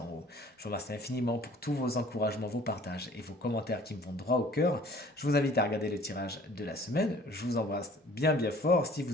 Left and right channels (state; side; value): normal; both; correlation 0.52